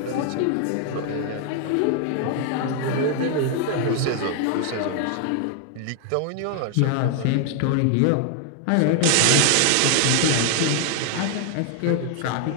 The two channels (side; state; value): both; different; correlation 0.00